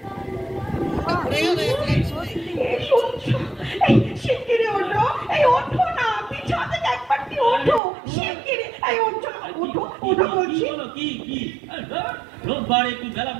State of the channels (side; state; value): left; drops out; at 7.8 s